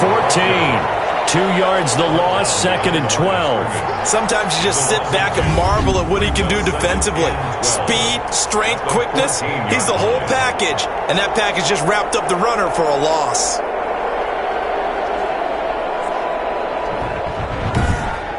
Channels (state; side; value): identical; both; correlation 1.00